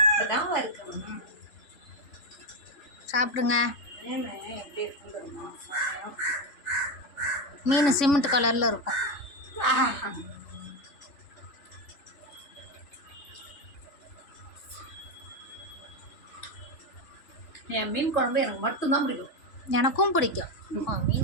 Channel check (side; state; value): right; late; 3.6 ms